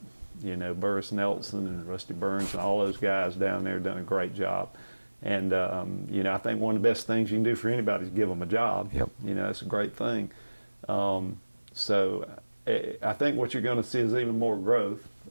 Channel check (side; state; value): both; inverted; correlation -1.00